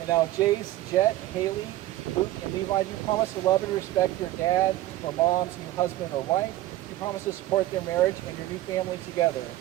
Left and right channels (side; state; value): left; quieter; 15.4 dB